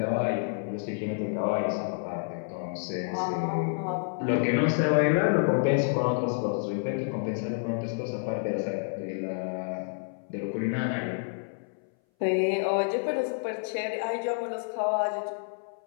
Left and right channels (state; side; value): silent; right; 59 dB below the other